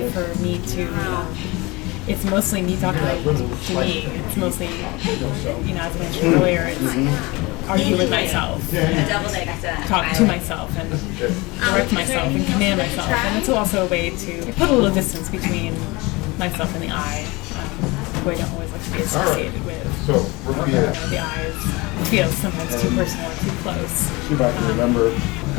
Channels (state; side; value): quieter; right; 24.0 dB